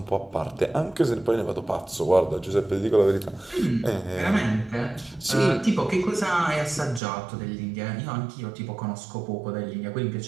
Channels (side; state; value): left; drops out; at 7.0 s